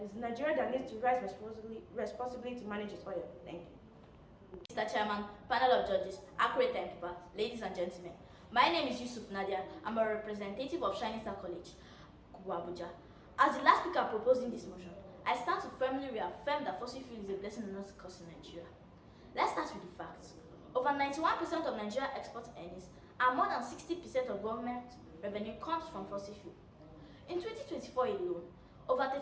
is Nigeria that needs to rise responsibly to manage its oil. Thank you. Mr. Chairman, panel of judges, accurate timekeeper, ladies and gentlemen. My name is Yusuf Nadia. I'm a representative of Shining Star College, Abuja. As the last speaker proposing this motion, I stand to firmly reaffirm that fossil fuel is a blessing and not a curse in Nigeria. Let's start with the facts. Over 91% of Nigeria export earnings and more than 60% of government revenue comes from fossil fuel. In 2024 alone, over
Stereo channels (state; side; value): identical; both; correlation 1.00